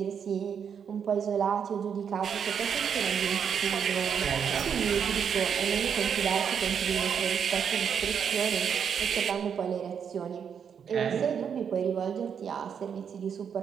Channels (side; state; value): left; quieter; 7.4 dB